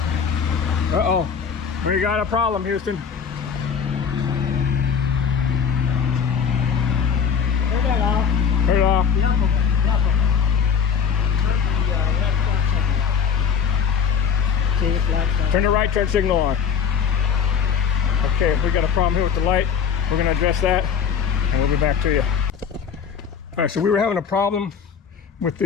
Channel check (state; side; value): quieter; right; 6.9 dB